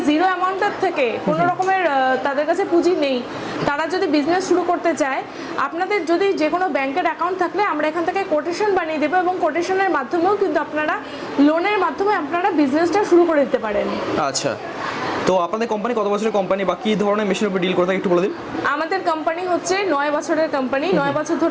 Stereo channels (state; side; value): identical; both; correlation 1.00